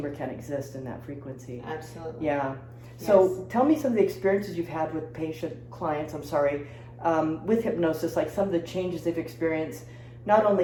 can't exist in that frequency. Yeah. So tell me some of the experiences you've had with clients, with hypnosis, like some of the changes they've experienced, not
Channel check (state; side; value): identical; both; correlation 1.00